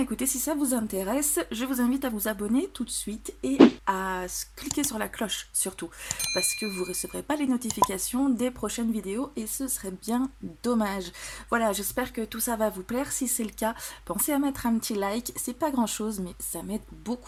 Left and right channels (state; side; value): identical; both; correlation 1.00